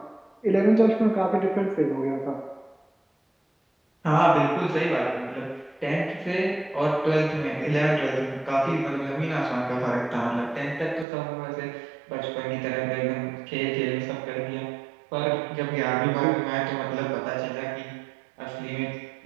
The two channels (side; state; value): left; drops out; at 11.1 s